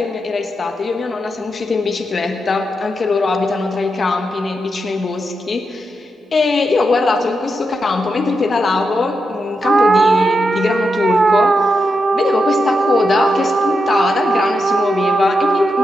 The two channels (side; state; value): both; normal; correlation 0.86